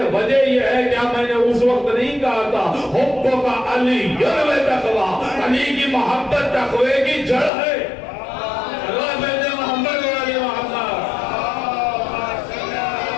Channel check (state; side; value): drops out; right; at 7.5 s